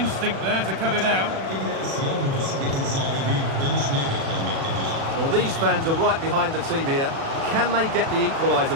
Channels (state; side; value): late; left; 37 ms